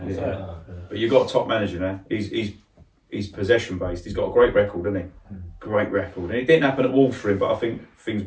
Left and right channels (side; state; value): both; identical; correlation 1.00